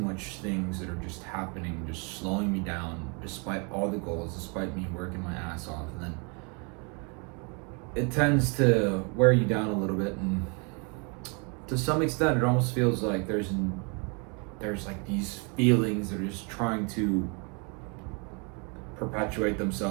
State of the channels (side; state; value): left; quieter; 34.4 dB